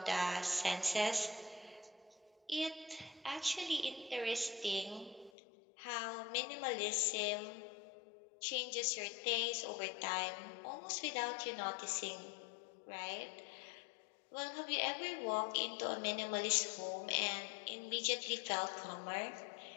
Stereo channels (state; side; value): drops out; right; at 5.3 s